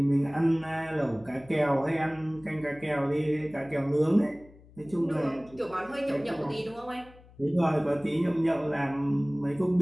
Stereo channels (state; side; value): noise; left; hum, 24 dB below the sound